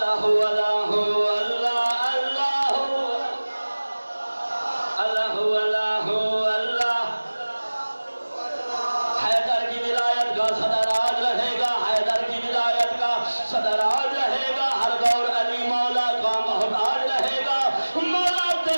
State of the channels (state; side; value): inverted; both; correlation -1.00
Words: सदराज रहेगा, हर दौर अली मौला का मोहताज रहेगा। मौला